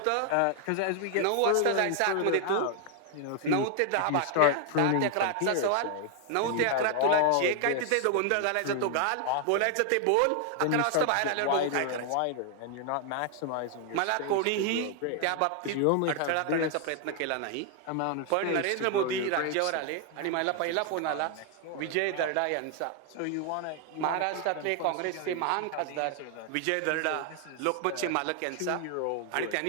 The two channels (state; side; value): different; both; correlation 0.00